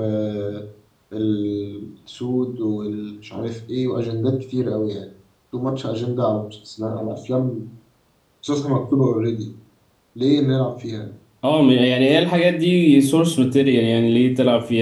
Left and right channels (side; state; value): both; identical; correlation 1.00